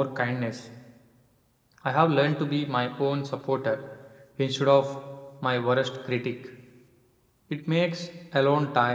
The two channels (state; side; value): identical; both; correlation 1.00